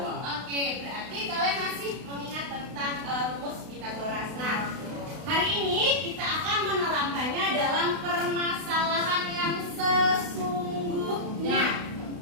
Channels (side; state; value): left; late; 32 ms